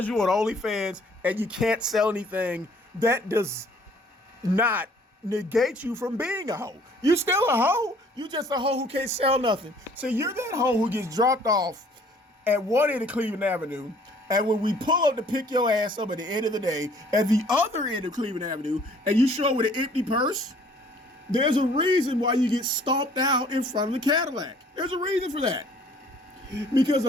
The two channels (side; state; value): both; normal; correlation 0.57